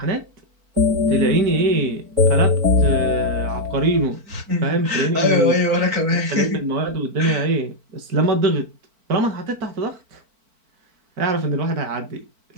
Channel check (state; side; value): late; left; 4.5 ms